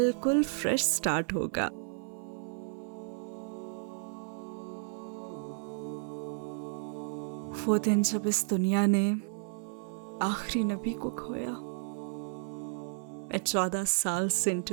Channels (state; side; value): silent; left; 56 dB below the other